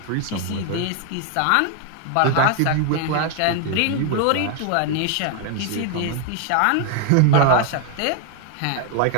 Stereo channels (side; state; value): both; different; correlation 0.01